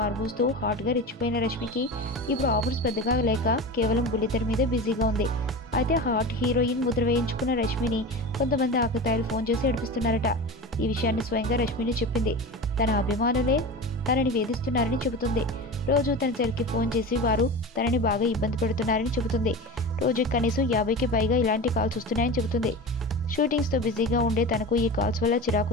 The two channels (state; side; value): normal; both; correlation 0.29